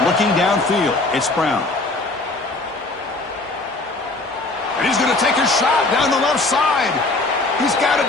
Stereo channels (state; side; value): quieter; right; 3.1 dB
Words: Looking downfield, it's Brown. And he's going to take a shot down the left side. He's got it